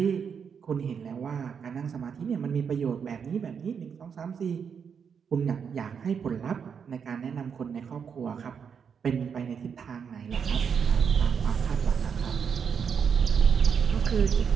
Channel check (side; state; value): left; quieter; 6.8 dB